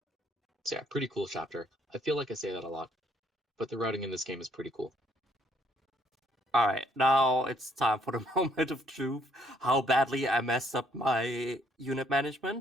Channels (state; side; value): normal; both; correlation 0.66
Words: So yeah, pretty cool chapter. I feel like I say that a lot, but the routing in this game is pretty cool. Alright, now it's time for the moment of truth. How badly I messed up my unit